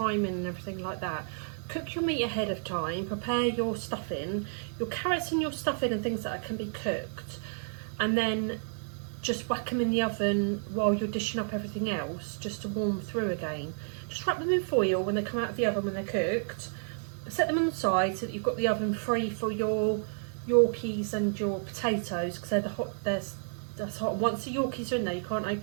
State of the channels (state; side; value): silent; left; digital silence